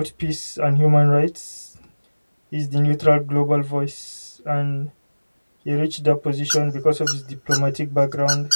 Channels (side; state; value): both; inverted; correlation -1.00